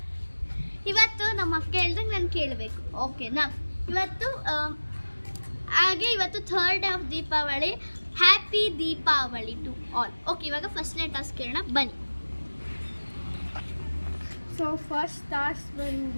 ಇವತ್ತು ನಮ್ಮ ಅಕ್ಕ ಹೇಳ್ದಂಗೆ ನಾನು ಕೇಳಬೇಕು, ಓಕೆನಾ? ಇವತ್ತು third of Deepavali. Happy Deepavali to all. Okay, ಇವಾಗ ಫಸ್ಟ್ನೇ ಟಾಸ್ಕ್ ಕೇಳೋಣ ಬನ್ನಿ. ಸೊ ಫಸ್ಟ್ ಟಾಸ್ಕ್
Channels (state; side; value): inverted; both; correlation -1.00